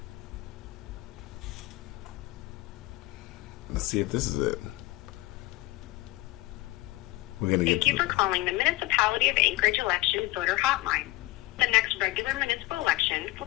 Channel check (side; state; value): right; quieter; 20.0 dB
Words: Let's see if this is it. We're gonna get. Thank you for calling the Municipality of Anchorage Election Voter Hotline. The next regular municipal election